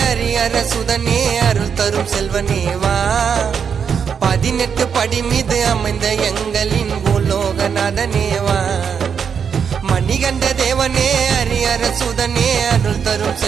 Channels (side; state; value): left; quieter; 7.0 dB